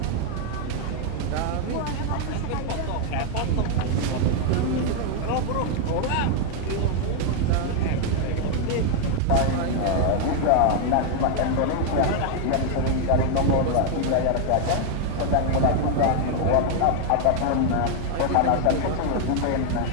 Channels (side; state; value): both; different; correlation 0.00